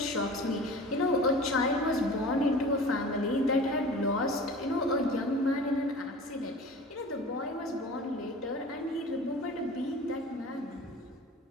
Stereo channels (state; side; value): normal; both; correlation 0.39